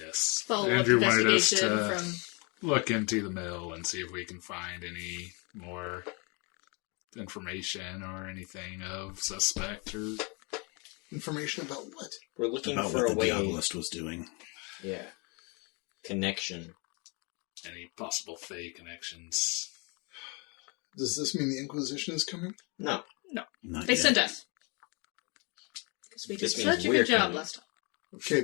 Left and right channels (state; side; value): quieter; right; 31.3 dB